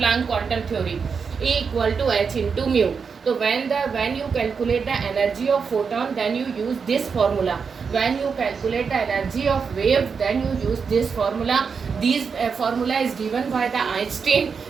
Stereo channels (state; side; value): quieter; left; 5.7 dB